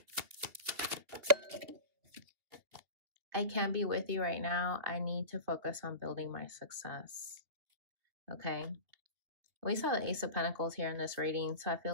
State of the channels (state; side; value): late; left; 2.8 ms